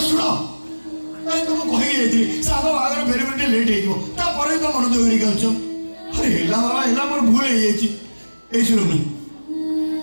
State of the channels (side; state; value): both; inverted; correlation -1.00